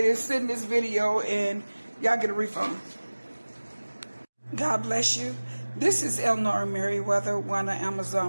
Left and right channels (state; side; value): inverted; both; correlation -1.00